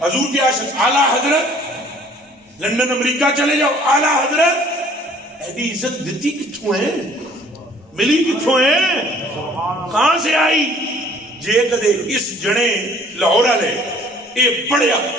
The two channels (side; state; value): both; normal; correlation 0.55